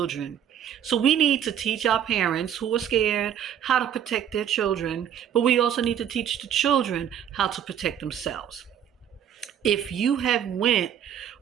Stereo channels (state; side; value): quieter; left; 9.4 dB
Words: So we need to teach our parents who are scared how to protect their children, but we also need to teach the children how to protect themselves. If you have went